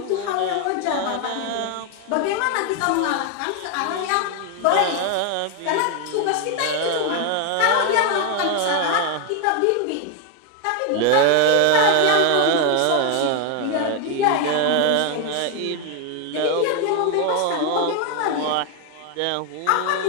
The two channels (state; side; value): different; both; correlation 0.01